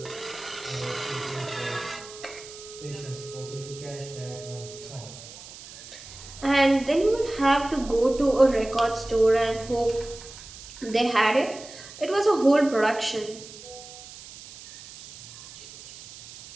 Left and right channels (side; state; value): right; noise; hiss, 16 dB below the sound